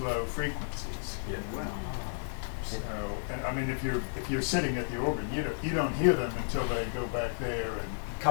frequencies. Yeah. So, and I mean, if you're sitting at the organ, you don't hear them until they go back there and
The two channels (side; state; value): right; silent; digital silence